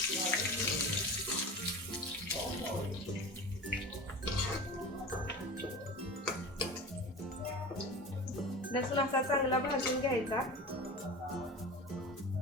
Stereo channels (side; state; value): both; normal; correlation 0.33